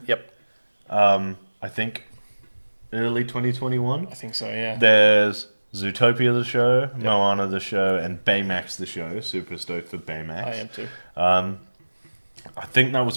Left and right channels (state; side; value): inverted; both; correlation -1.00